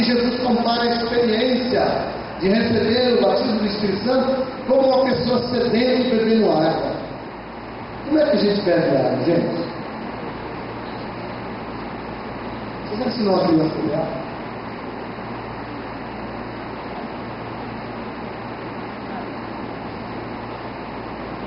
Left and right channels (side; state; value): both; identical; correlation 1.00